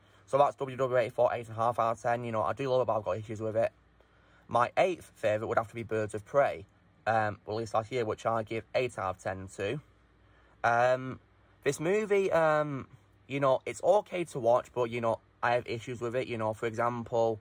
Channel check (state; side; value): identical; both; correlation 1.00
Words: so that's WW84, 8.5 out of 10. You know, I do love it, but I've got issues with it. My eighth favourite would have to be Birds of Prey, released last year, which I give 8 out of 10 to. This movie, you know, it's okay to watch, but, you know, I have issues with it. You know, for example,